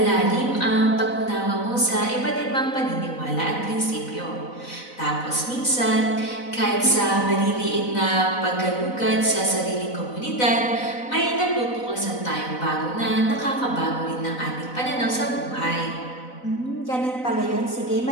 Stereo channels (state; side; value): late; right; 4.0 ms